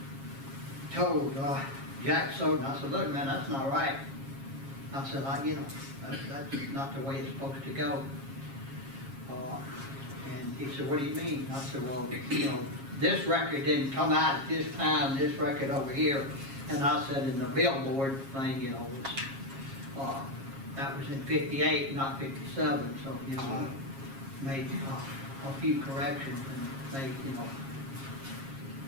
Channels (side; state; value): left; late; 7.4 ms